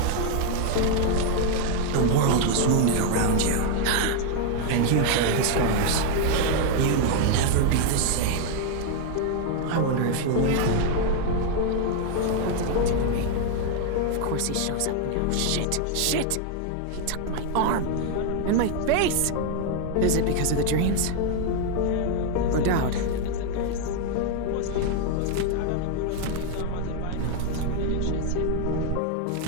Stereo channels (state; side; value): different; both; correlation 0.00